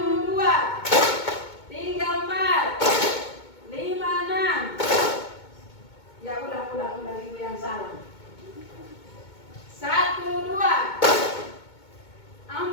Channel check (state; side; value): late; right; 2.2 ms